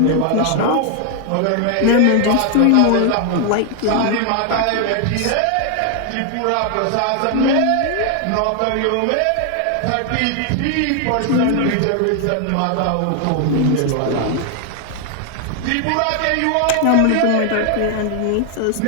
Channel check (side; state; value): both; different; correlation 0.00